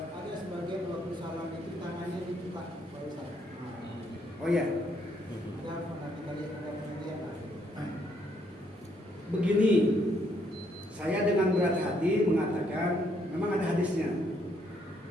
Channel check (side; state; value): both; normal; correlation 0.71